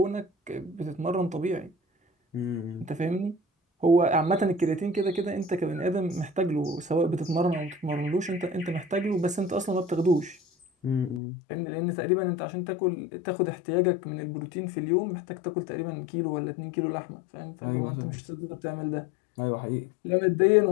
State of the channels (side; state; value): right; drops out; at 11.2 s